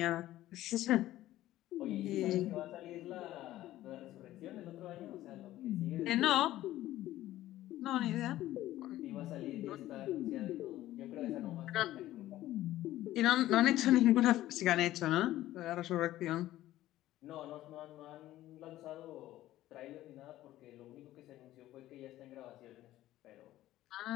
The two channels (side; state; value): right; quieter; 14.7 dB